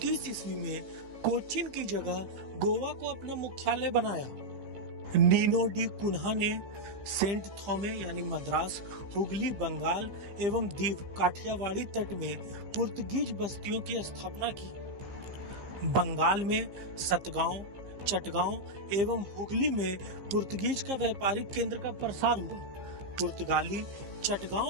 ईस्वी में कोचीन की जगह गोवा को अपना मुख्यालय बनाया। नीनो डी कुन्हा ने सेंट थॉमे यानी मद्रास, हुगली, बंगाल एवं दीव काठियावाड़ी तट में पुर्तगीज बस्तियों की स्थापना की। बंगाल में सतगांव, चटगांव एवं हुगली में पुर्तगीज का व्यापारिक केंद्र का प्रसार हुआ। पुर्तगाली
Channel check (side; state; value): left; late; 15 ms